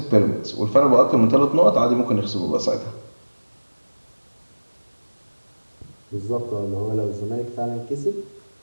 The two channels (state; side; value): inverted; both; correlation -1.00